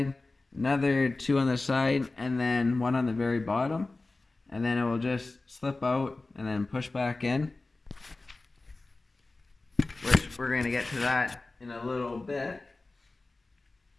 another 2 on the side, and then 1 on the very bottom. And then it will just slip out and then push back in, which we're going to get to that in a little bit.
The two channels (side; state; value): right; quieter; 3.3 dB